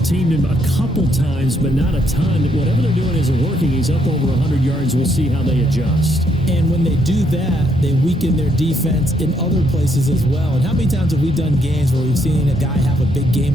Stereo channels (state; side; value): normal; both; correlation 0.73